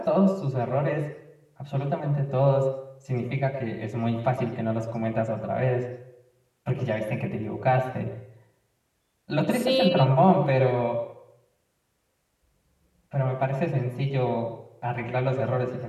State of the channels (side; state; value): both; identical; correlation 1.00